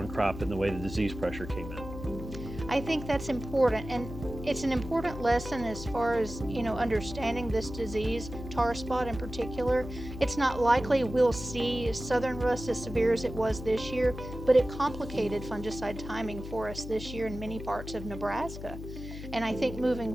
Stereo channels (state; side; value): noise; left; hum, 10 dB below the sound